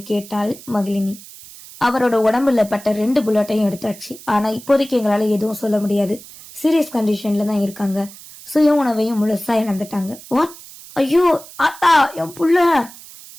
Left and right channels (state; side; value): noise; right; hiss, 18 dB below the sound